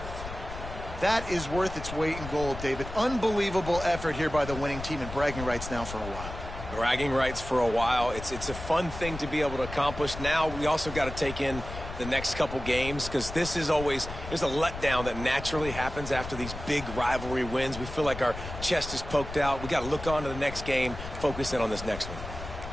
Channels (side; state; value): left; noise; rumble, 10 dB below the sound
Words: That is worth its weight in gold, David. Unbelievable effort here by the winning team, and bragging rights now for a while. Bragging rights for a while. It's a fun thing to be able to accomplish. Now we also got to take in the next couple games, because this is always, there's a letdown that naturally happens after these big rivalry wins. We feel like our chest is poked out. We got to look on to the next game, focus in on this next one.